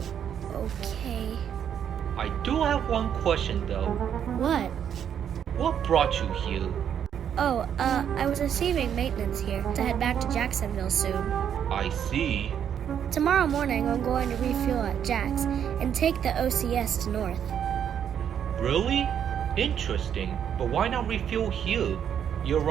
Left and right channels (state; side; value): quieter; left; 8.8 dB